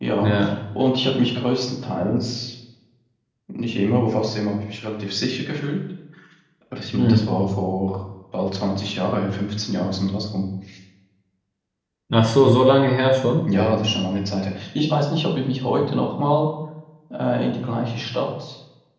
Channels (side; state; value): both; identical; correlation 1.00